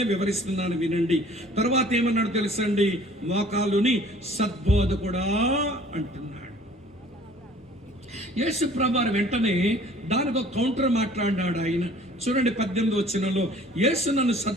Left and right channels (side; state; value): both; normal; correlation 0.52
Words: వివరిస్తున్నాను, వినండి. తర్వాత ఏమన్నాడు తెలుసండి? మోకాలుని సద్బోధకుడా అంటున్నాడు. యేసు ప్రభువారు వెంటనే దానికి ఒక కౌంటర్ మాట్లాడినాడు ఆయన. చూడండి 18వ వచనంలో, యేసు నన్ను